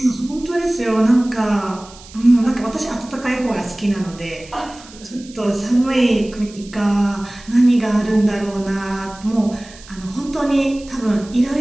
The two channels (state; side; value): noise; right; hiss, 21 dB below the sound